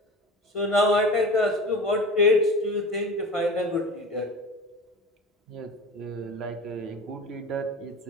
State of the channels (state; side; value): normal; both; correlation 0.34